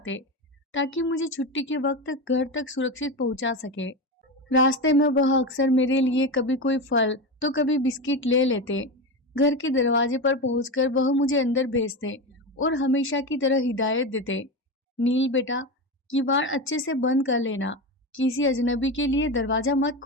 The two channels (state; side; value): normal; both; correlation 0.19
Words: ताकि मुझे छुट्टी के वक्त घर तक सुरक्षित पहुंचा सके। रास्ते में वह अक्सर मेरे लिए कभी कोई फल तो कभी बिस्किट ले लेते। घर के दरवाजे पर पहुंचकर वह मुझे अंदर भेजते और हमेशा की तरह हिदायत देते, नील बेटा, किवाड़ अच्छे से बंद कर लेना, किसी अजनबी के लिए दरवाजा मत